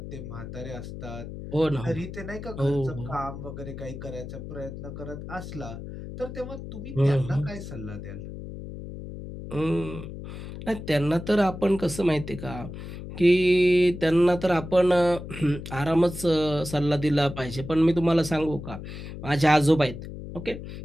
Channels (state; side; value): noise; left; hum, 10 dB below the sound